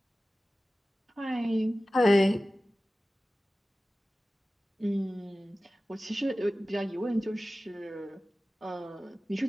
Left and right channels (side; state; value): both; normal; correlation 0.96